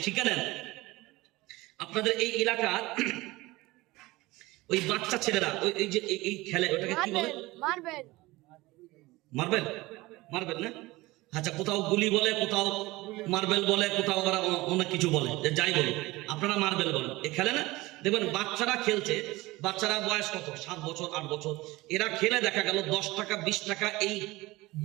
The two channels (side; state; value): left; quieter; 20.3 dB